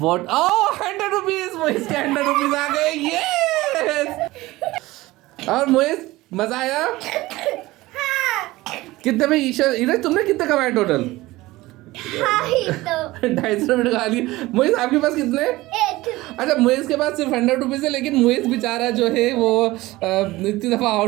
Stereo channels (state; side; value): quieter; left; 18.9 dB